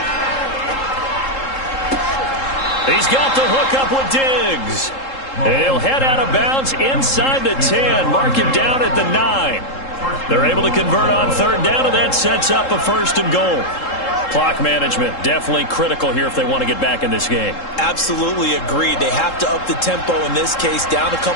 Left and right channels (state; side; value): late; right; 3.7 ms